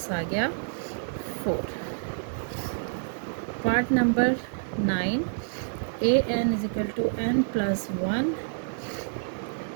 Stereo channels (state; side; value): silent; left; digital silence